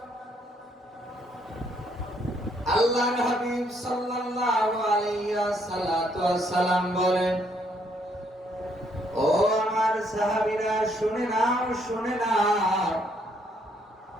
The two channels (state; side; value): normal; both; correlation 0.70